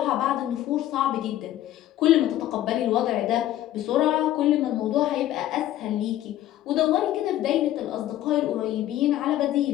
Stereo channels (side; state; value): right; quieter; 13.4 dB